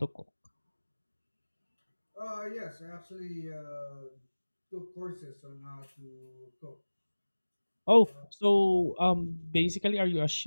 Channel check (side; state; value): both; inverted; correlation -1.00